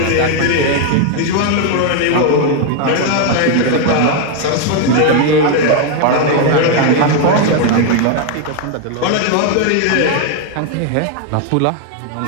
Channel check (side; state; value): both; different; correlation 0.01